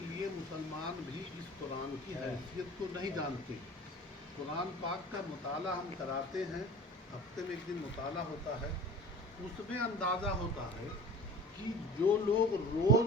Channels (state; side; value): normal; both; correlation 0.41